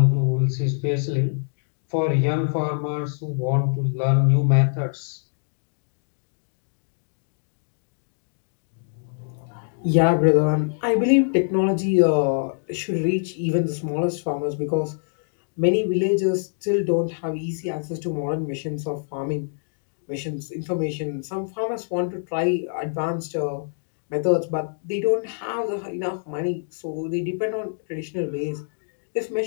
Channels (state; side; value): silent; right; digital silence